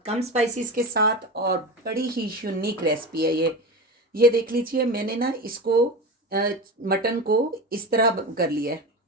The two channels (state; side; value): normal; both; correlation 0.26